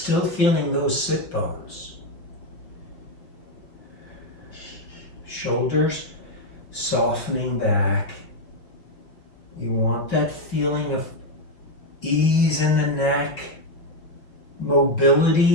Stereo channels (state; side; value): late; right; 5.9 ms